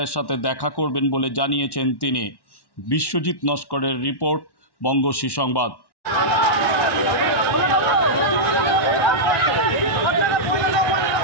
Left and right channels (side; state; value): right; late; 1.1 ms